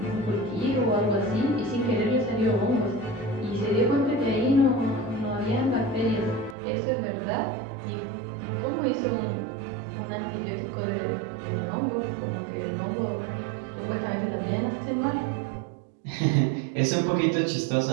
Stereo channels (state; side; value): drops out; left; at 6.6 s